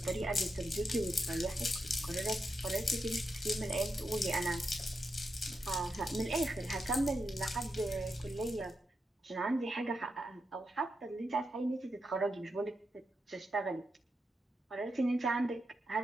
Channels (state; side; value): normal; both; correlation 0.86